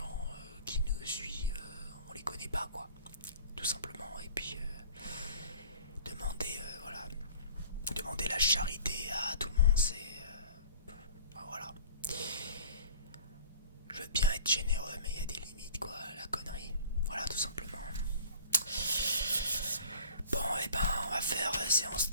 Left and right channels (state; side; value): inverted; both; correlation -0.44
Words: qui nous suivent, on les connaît pas, quoi, tout simplement. Et puis demander la charité à tout le monde, c'est voilà. Je veux bien être généreux, mais il y a des limites, quoi, la connerie. Voilà, tout simplement. Bon, et ben, on va faire séance